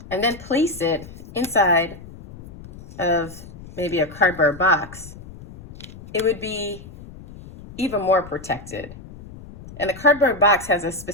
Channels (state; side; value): noise; left; rumble, 17 dB below the sound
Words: and then place it inside of maybe a cardboard box, it would be even more protected. And the cardboard box has a